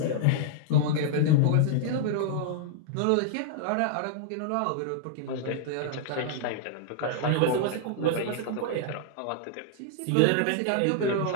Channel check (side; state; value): both; different; correlation -0.01